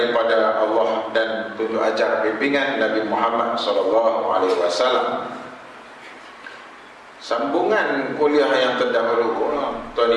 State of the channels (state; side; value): identical; both; correlation 1.00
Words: Allah dan tunjuk ajar bimbingan Nabi Muhammad SAW. Sambungan kuliah yang terdahulu, Tuan